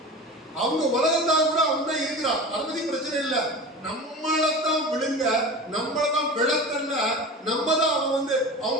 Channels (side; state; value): both; normal; correlation 0.32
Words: அவங்க உலகத்தால் கூட அவங்க இருக்கிறான். அதை பத்தி பிரச்சனை இல்லை. நம்மளத்தான் விழுங்க, நம்மளதான் விளக்கல்ல, நம்ம தான் அவன்